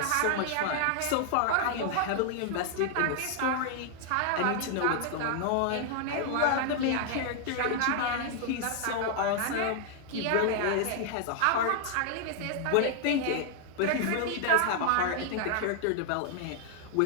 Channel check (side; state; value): both; different; correlation 0.00